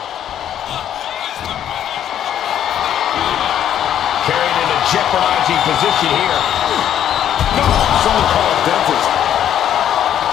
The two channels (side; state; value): right; quieter; 10.3 dB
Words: Carried into jeopardizing position here. So-called dentist.